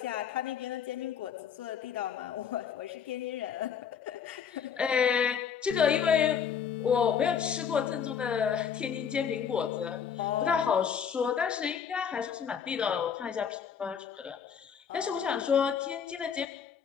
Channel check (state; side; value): quieter; right; 7.4 dB